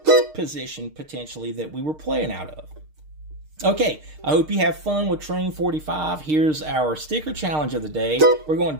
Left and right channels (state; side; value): late; left; 6.5 ms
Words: position, potentially, that we were playing out of. Okay, I hope you have fun with Train 45. Here's our sticker challenge of the day. We're